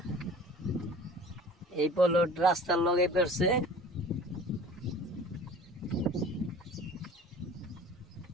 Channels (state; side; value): normal; both; correlation 0.43